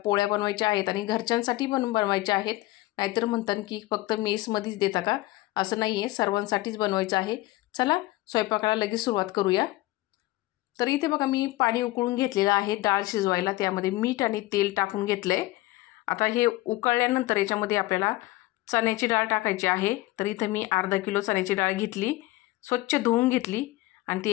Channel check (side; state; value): right; quieter; 18.6 dB